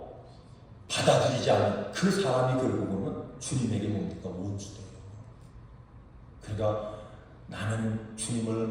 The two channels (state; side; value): identical; both; correlation 1.00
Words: 받아들이지 않는 그 사람이 결국은 주님에게 뭡니까? 원수돼요. 그러니까 나는 주님을